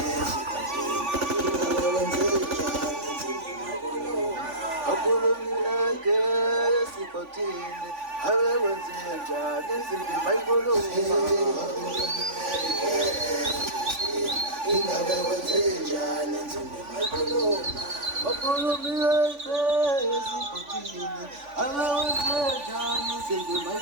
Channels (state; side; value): late; left; 3.5 ms